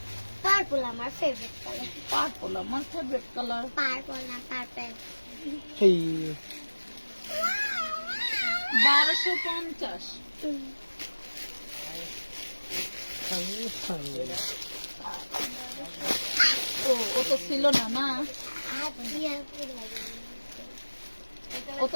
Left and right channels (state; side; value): inverted; both; correlation -1.00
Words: পার্পল আমার ফেভারিট কালার। পার্পল আমার ফেভারিট কালার। পার্পল না পার্পল। সেই 1250। ও তো ছিল না, না ও